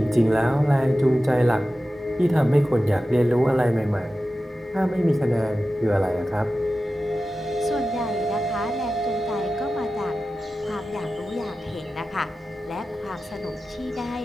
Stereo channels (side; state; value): both; normal; correlation 0.94